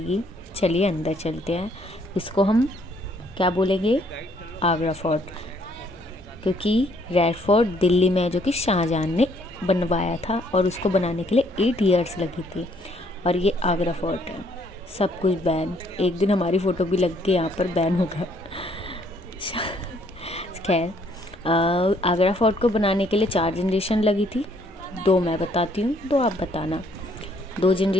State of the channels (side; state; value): both; normal; correlation 0.66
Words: चलिए अंदर चलते हैं। इसको हम क्या बोलेंगे, आगरा फोर्ट, क्योंकि रेड फोर्ट दिल्ली में है जो कि शाहजहां ने बनवाया था और उसको बनाने के लिए 8 इयर्स लगी थी। और ये आगरा फोर्ट है। सब कुछ बैन, एक दिन हमारी फ़ोटो भी लग के यहाँ पर बैन होगा। खैर, आगरा फोर्ट को बनाने के लिए 4 जनरेशन लगी थी। 2 मैं बताती हूँ, 2 आप बताना। 2